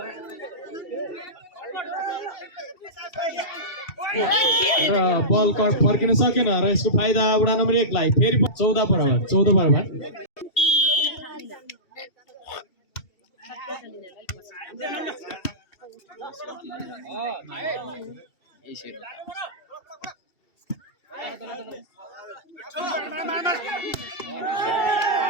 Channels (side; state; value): right; late; 2.7 ms